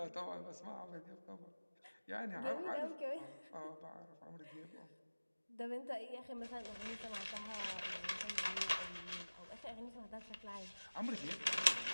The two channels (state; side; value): inverted; both; correlation -1.00